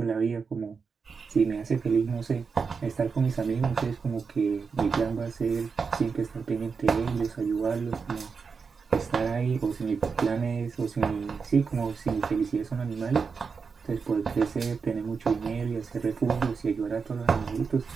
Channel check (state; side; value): quieter; left; 5.3 dB